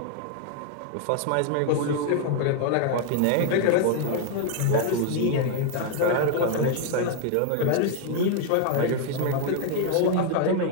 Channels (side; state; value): both; different; correlation 0.01